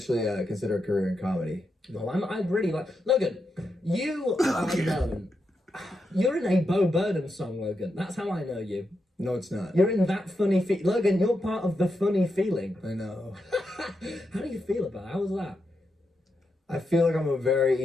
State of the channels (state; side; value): normal; both; correlation 0.85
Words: consider a career in comedy. Well, I really like... Logan, you are known... You're in a Bo Burnham song, Logan. That's how I know you. No, it's not. You're in that funny... Logan, you're part of the funny feeling. I know. How do you feel about it? How was that? I feel like I'm a very